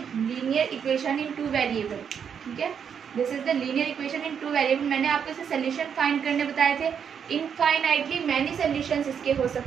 linear equation in two variable, ठीक है, this is the linear equation in two variable. मैंने आपको इसे solution find करने बताए थे। इनफाइनाइटली मैनी सोल्यूशंस इसके हो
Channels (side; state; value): left; quieter; 7.5 dB